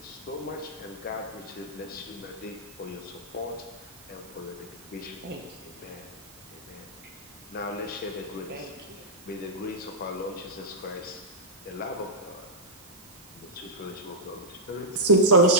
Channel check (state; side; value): noise; right; hiss, 22 dB below the sound